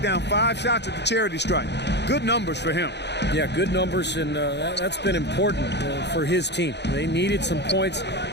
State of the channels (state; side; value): late; right; 0.50 ms